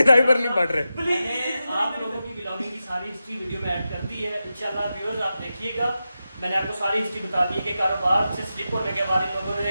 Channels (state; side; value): inverted; both; correlation -0.91